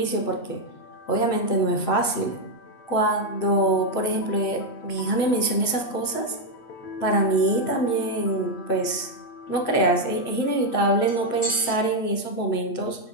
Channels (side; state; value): right; late; 8.3 ms